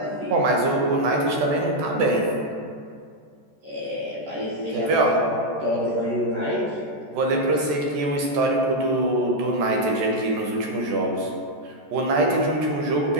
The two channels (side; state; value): left; late; 14 ms